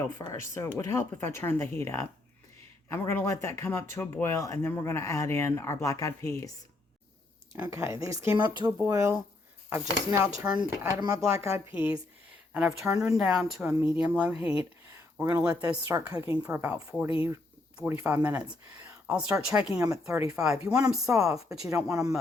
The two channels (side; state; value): right; quieter; 3.0 dB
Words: first. So it would help if I turned the heat up. And we're going to let that come up to a boil, and then we're going to add in our black-eyed peas. Okay, these came up to a boil. I've just now added my black-eyed peas, and I've turned them down to a medium-low heat. We're going to let those start cooking for about 40, 45 minutes. I'll start checking them at 35. You want them soft, but you don't want them